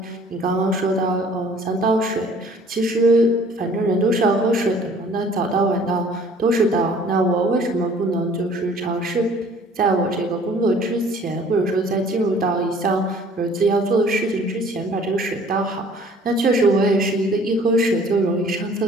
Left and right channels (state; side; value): normal; both; correlation 0.53